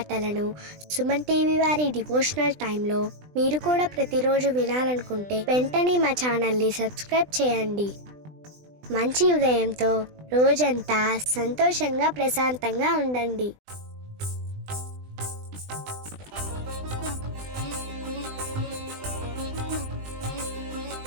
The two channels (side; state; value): left; late; 20 ms